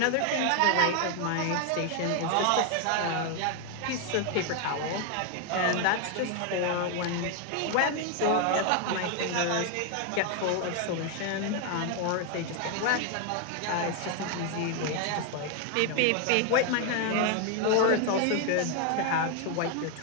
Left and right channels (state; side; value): different; both; correlation 0.01